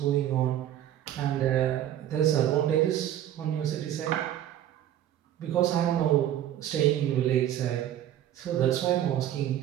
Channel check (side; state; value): left; quieter; 11.6 dB